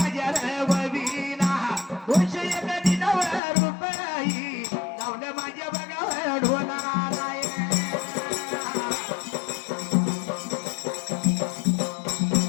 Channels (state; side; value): drops out; right; at 3.4 s